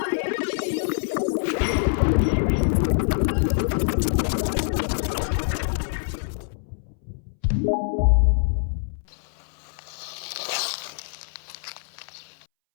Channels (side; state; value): right; silent; 62 dB below the other